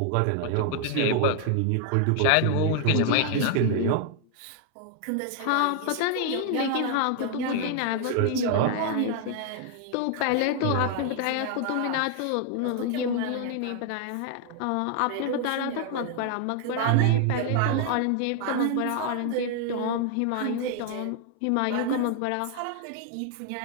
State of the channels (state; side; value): different; both; correlation 0.00